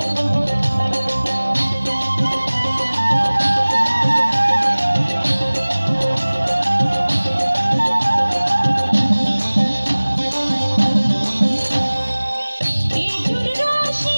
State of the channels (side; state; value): both; inverted; correlation -1.00